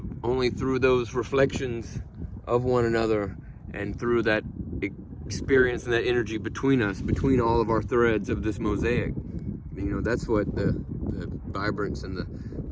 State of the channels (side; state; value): both; identical; correlation 1.00